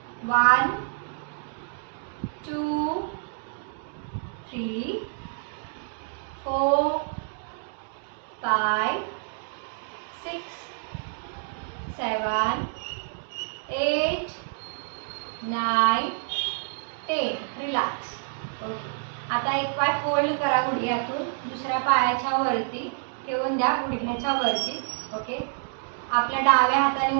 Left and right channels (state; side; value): silent; left; digital silence